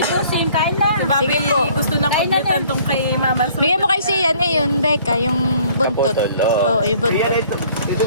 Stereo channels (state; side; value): inverted; both; correlation -0.57